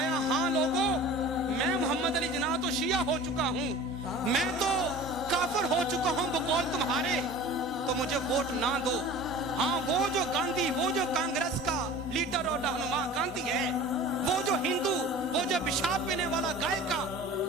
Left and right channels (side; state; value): both; normal; correlation 0.40